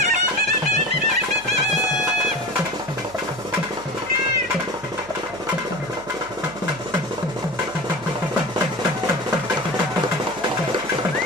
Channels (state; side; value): noise; right; hum, 21 dB below the sound